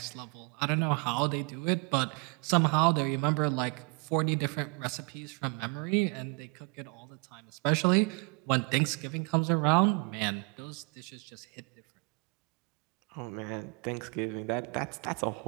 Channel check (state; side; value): quieter; left; 32.3 dB